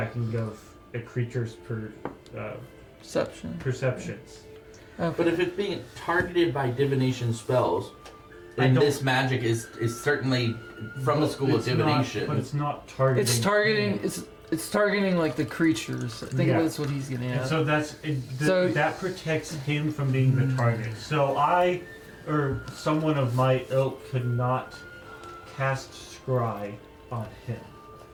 of a creature's Perception. perceptions. But if it's being targeted by divination spells, then don't- this magic is certainly from the school of It's not- divination. but it's not targeting. It's targeting. It's targeting like the creatures. I think Yeah. that's what he's getting And at. so So- that protects him from being the target. So I, or someone of my ilk, could not cast scry on him.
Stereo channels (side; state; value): both; identical; correlation 1.00